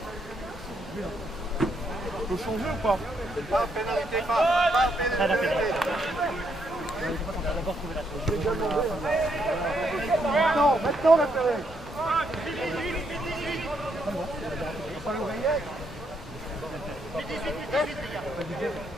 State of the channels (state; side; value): normal; both; correlation 0.75